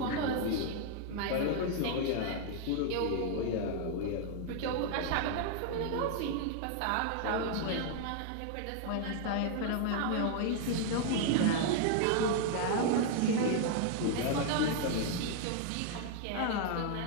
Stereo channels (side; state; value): both; different; correlation 0.00